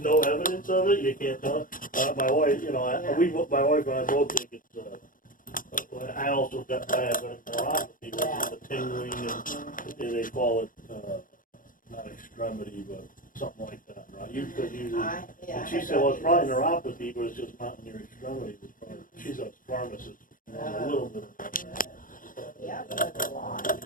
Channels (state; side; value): late; right; 0.40 ms